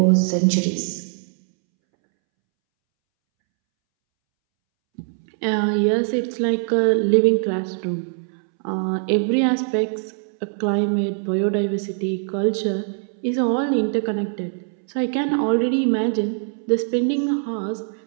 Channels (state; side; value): silent; left; 64 dB below the other